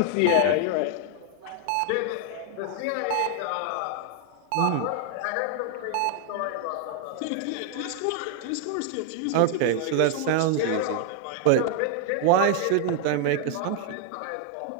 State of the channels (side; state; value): both; different; correlation 0.00